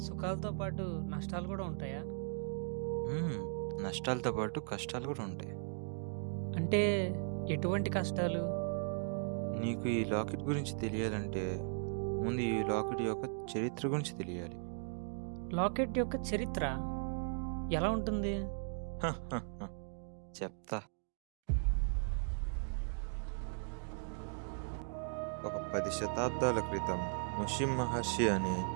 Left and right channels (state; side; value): silent; left; 53 dB below the other